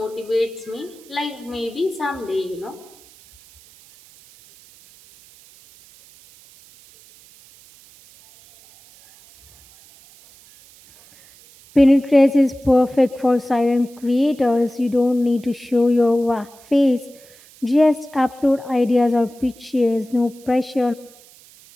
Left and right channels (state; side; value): noise; right; hiss, 25 dB below the sound